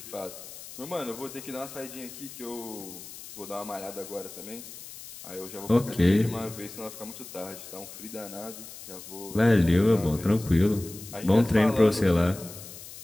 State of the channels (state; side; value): noise; left; hiss, 14 dB below the sound